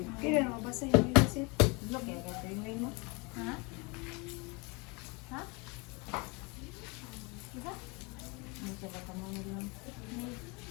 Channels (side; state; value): right; quieter; 28.8 dB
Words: Kaya na mabasa yung visit. Vlog yan, kaya yung mo. Ha? Ha? Diba? Ano ka ba kamo lang?